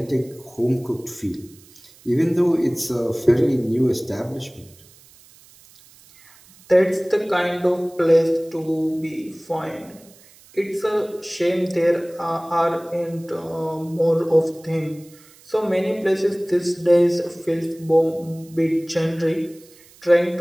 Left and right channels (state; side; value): noise; right; hiss, 26 dB below the sound